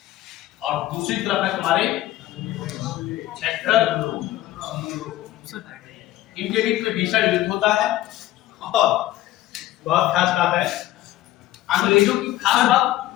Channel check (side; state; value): right; quieter; 14.9 dB